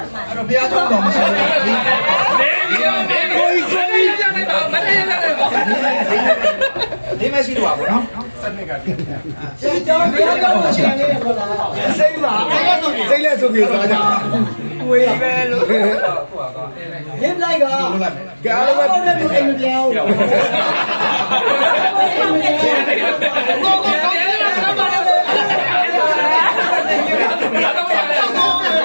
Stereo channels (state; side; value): inverted; both; correlation -1.00